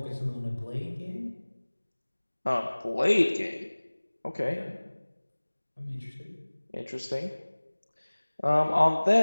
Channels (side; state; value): both; inverted; correlation -1.00